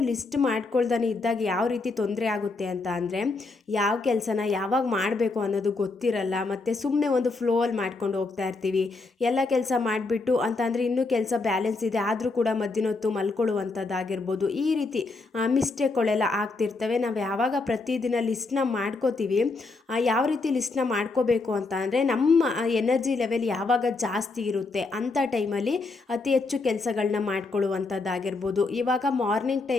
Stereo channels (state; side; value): quieter; right; 3.6 dB